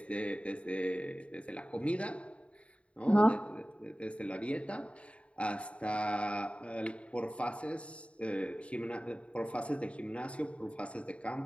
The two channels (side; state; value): right; late; 0.062 ms